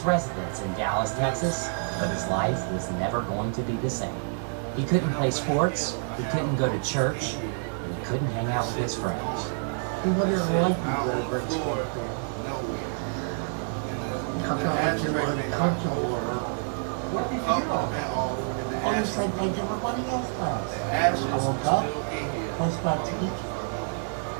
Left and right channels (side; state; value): left; silent; 60 dB below the other